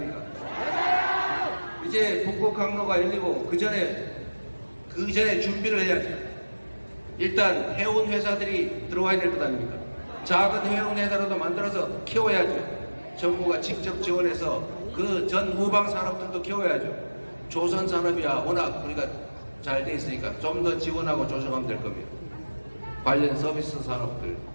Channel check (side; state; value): both; inverted; correlation -1.00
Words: 이제 북극 항로가 열리고 그 전에 준비를 해야죠. 일단 해운 회사들이 들어와야 될 것 아닙니까? 작은 해운 회사라도 만들어서 키워야죠. 정부가 직접 지원해서 그 전 후방 산업들도 키워야죠. 조선 산업이야 워낙 우리가 잘 돼 있으니까 좀 더 지원하고 조정하면 될 겁니다. 관련 서비스 산업들